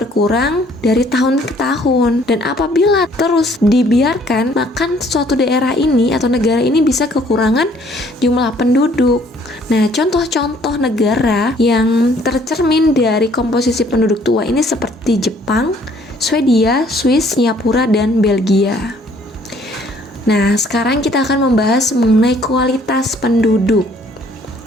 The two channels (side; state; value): both; normal; correlation 0.61